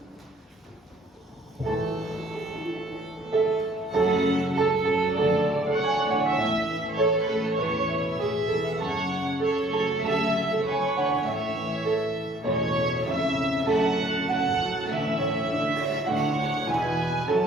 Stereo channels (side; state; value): both; normal; correlation 0.61